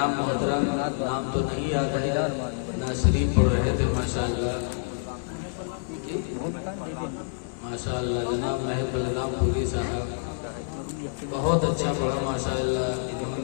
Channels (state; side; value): silent; right; 56 dB below the other